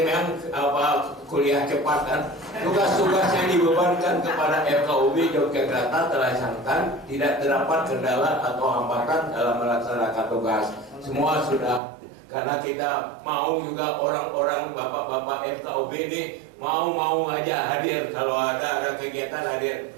memang kuliah cepat kan. Tugas-tugas yang dibebankan kepada FKUB Yogyakarta terlaksanakan, tidak terdapat kendala atau hambatan dalam melaksanakan tugas. Semua sudah, karena kita mau juga orang-orang bapak-bapak FKUB ini mau aja hadir kalau ada kegiatan hadir.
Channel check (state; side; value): drops out; left; at 11.8 s